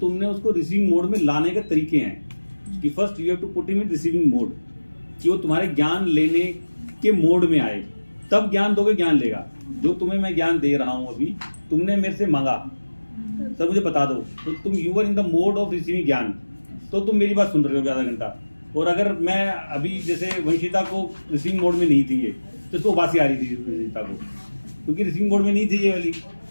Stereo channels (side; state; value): both; inverted; correlation -1.00